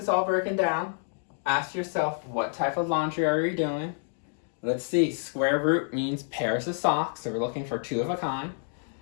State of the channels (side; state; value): right; silent; digital silence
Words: all broken down, ask yourself, what type of laundry are you doing? Let's see, square root means pairs of socks, so we're looking for 2 of a kind.